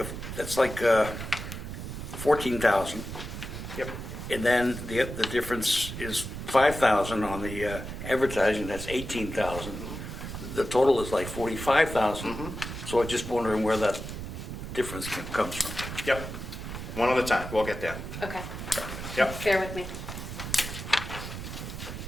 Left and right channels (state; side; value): noise; right; rumble, 8 dB below the sound